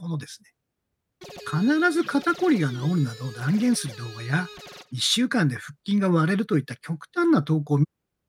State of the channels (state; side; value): identical; both; correlation 1.00